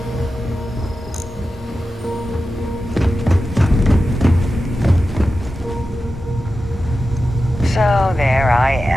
So there I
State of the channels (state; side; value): normal; both; correlation 0.92